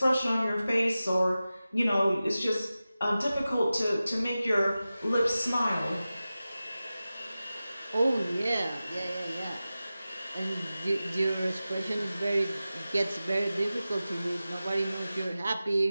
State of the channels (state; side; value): inverted; both; correlation -0.95